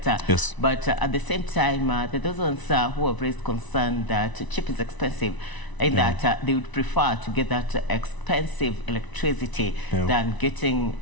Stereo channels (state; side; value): late; right; 1.0 ms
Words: Yes. But at the same time, there are those ones who have raised concern that cheap is expensive, and that they would prefer to get that expensive electricity than getting